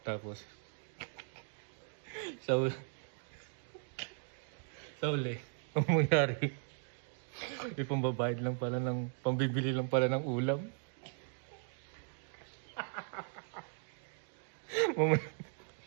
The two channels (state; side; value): silent; left; 52 dB below the other